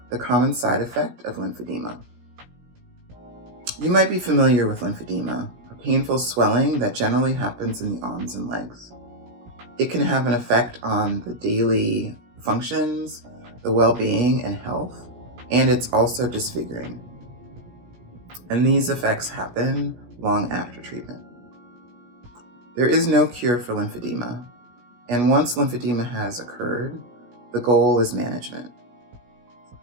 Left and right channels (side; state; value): left; late; 17 ms